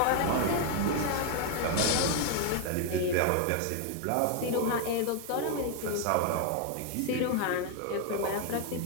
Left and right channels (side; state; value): both; different; correlation 0.00